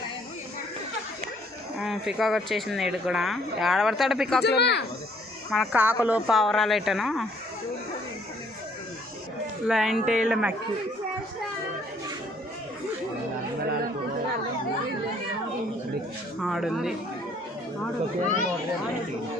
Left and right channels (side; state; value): both; normal; correlation 0.63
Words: peacock వచ్చేసింది ఇటు కూడా ఆడబడతాడు పికాక్లో మన కాకులు పావురాలు ఎట్టను లయన్ టైల్ మ్యాక్యూ ఆడుంది